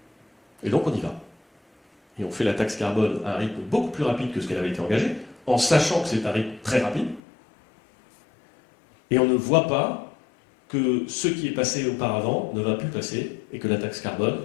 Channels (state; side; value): drops out; right; at 7.2 s